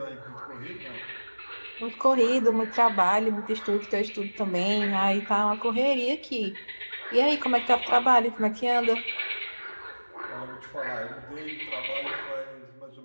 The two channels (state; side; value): inverted; both; correlation -1.00